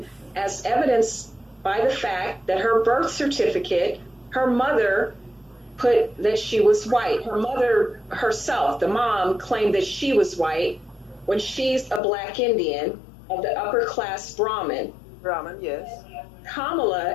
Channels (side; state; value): right; drops out; at 12.0 s